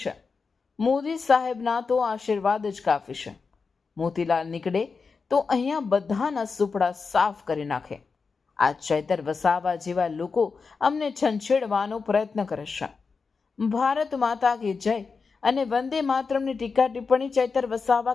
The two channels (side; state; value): right; quieter; 4.9 dB